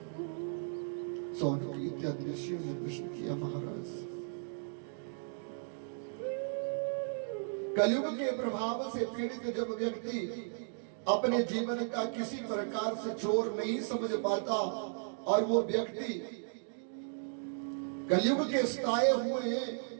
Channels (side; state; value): left; silent; digital silence